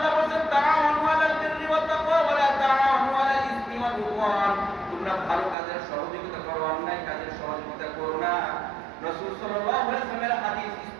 বলেন তাআওয়ানু আলাল বিররি ওয়াত তাকওয়া ওয়া লা তাআওয়ানু আলাল ইসমি ওয়াল উদওয়ান। তোমরা ভালো কাজের সহযোগিতা করো, অন্যায় কাজের সহযোগিতা করো না। রাসূল সাল্লাল্লাহু আলাইহি ওয়াসাল্লামের হাদিস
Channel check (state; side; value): drops out; left; at 5.6 s